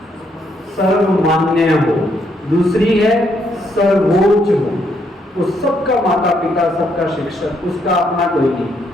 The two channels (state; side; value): normal; both; correlation 0.74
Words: सर्वमान्य हो। दूसरी है सर्वोच्च हो, वो सबका माता पिता, सबका शिक्षक, उसका अपना कोई नहीं।